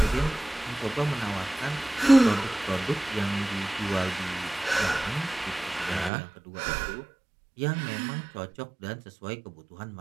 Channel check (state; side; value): drops out; left; at 6.1 s